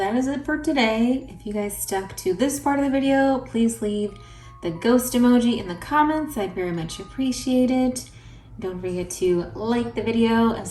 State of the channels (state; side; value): identical; both; correlation 1.00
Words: is it for today. If you guys stuck to this part of the video, please leave the ghost emoji in the comments. I'd very much appreciate it. Don't forget to like the video